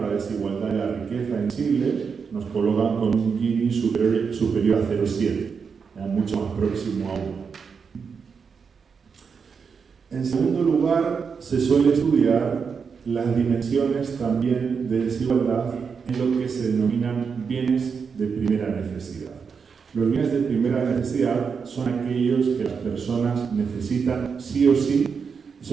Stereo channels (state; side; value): quieter; left; 5.9 dB